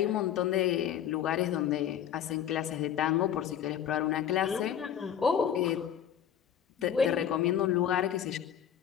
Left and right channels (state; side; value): quieter; right; 9.5 dB